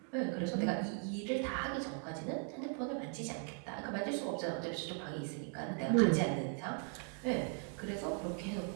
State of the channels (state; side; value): quieter; left; 39.3 dB